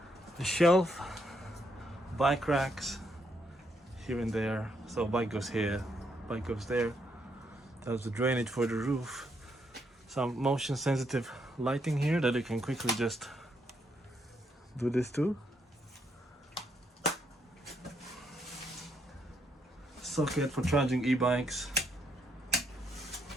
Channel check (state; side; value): normal; both; correlation 0.75